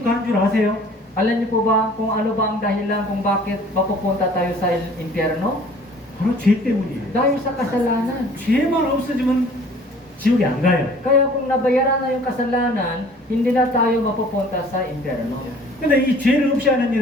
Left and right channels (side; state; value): both; normal; correlation 0.51